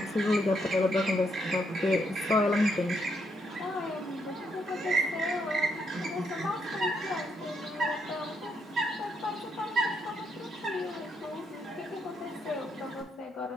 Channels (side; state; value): both; normal; correlation 0.76